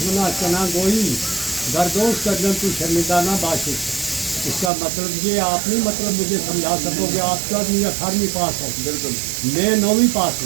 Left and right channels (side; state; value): left; drops out; at 4.7 s